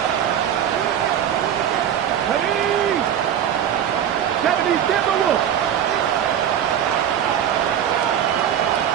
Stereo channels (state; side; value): quieter; left; 9.6 dB